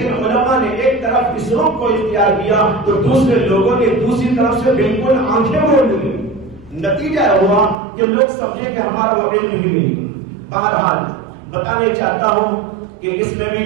علماء نے ایک طرف اس رخ کو اختیار کیا تو دوسرے لوگوں نے دوسری طرف سے بالکل آنکھیں موڑ لی۔ نتیجہ ہوا کہ لوگ سمجھے کہ ہمارا وہ علم ہی نہیں۔ بہرحال بتانے چاہتا ہوں کہ اس میں بھی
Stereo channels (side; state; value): left; drops out; at 7.8 s